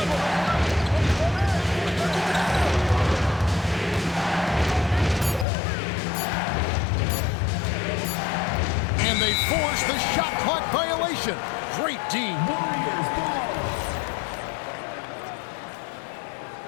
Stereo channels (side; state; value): right; drops out; at 5.5 s